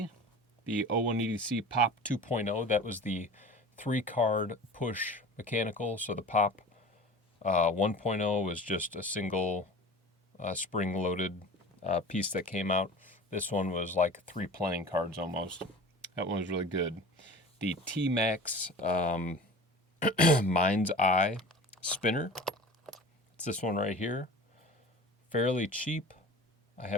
the O180C Pop 2.0. That was the 3-card push mechanical. So the Pop 1.0 was just a single spring-loaded piece that came out. This one was like 3 playing cards almost. That one was really good. The T-Max Mind's Eye spinner. It's this one right here. Fairly cheap. I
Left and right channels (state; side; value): normal; both; correlation 0.39